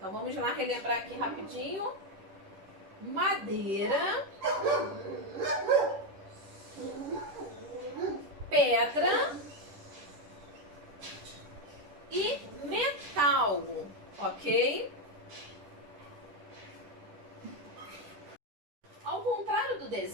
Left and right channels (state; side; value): late; left; 10 ms